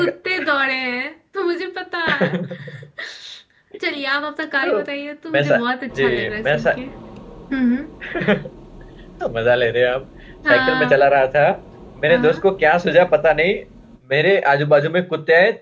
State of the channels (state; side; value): identical; both; correlation 1.00